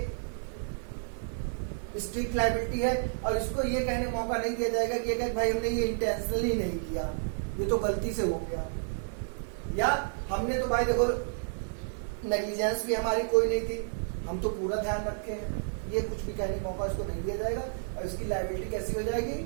स्ट्रिक्ट लायबिलिटी है, और इसको ये कहने का मौका नहीं दिया जाएगा कि भाई हमने ये इंटेंशनली नहीं किया, ये तो गलती से हो गया, या हमने तो भाई देखो नेग्लिजेंस भी हमारी कोई नहीं थी, हम तो पूरा ध्यान रखे हैं। ये कुछ भी कहने का मौका इसको नहीं दिया जाएगा, और इसकी लायबिलिटी कैसी हो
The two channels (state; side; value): silent; left; 57 dB below the other